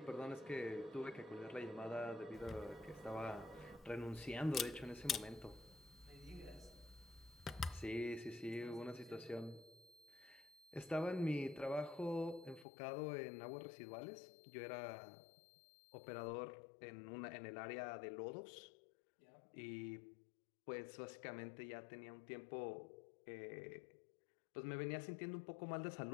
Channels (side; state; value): right; drops out; at 12.7 s